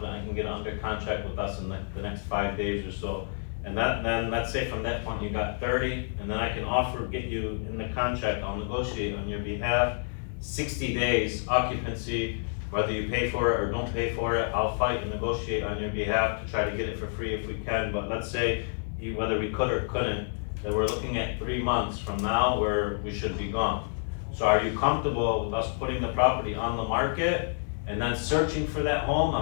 I can get under contract with us in the next 5 days or so. And then let's say from that point you got 30, and then I can get you in the contract, I'll negotiate on your behalf. 60 days occupancy, whether you pay for it or don't pay for it, I'll fight and negotiate on your behalf to try to get it for free if we can. But let's say, whether we could or couldn't, that we're looking at 3 months from now where we should be gone. So are you comfortable with us putting the property on the market and then searching for that home?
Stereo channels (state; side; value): silent; right; 59 dB below the other